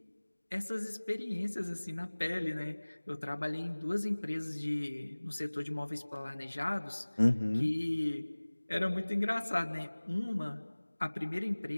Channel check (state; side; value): inverted; both; correlation -1.00